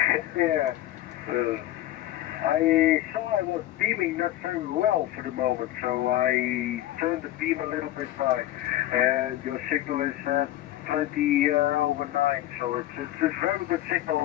Yeah. I saw I was beaming not very well for the moment, so I turned the beam a little bit high. And your signal is 20 over 9, so it's a very good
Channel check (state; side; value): quieter; right; 14.3 dB